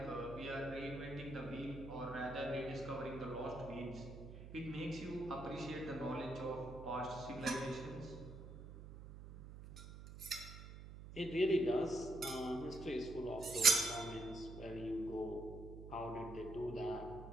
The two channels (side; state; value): right; noise; hum, 12 dB below the sound